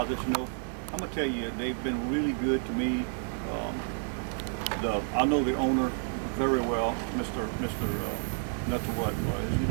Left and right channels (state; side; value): silent; left; 58 dB below the other